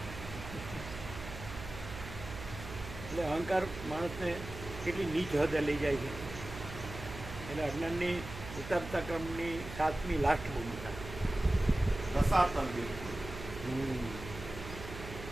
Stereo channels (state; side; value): noise; right; hum, 11 dB below the sound